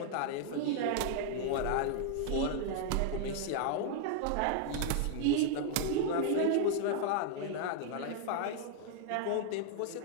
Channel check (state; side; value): different; both; correlation 0.00